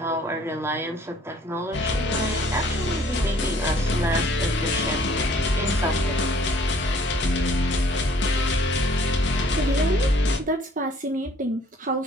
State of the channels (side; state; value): both; normal; correlation 0.58